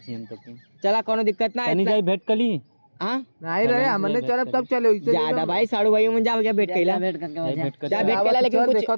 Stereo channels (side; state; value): both; inverted; correlation -1.00